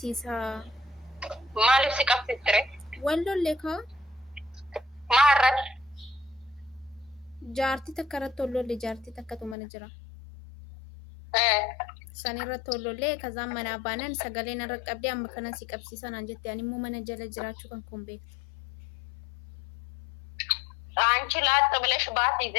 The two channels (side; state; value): right; drops out; at 9.6 s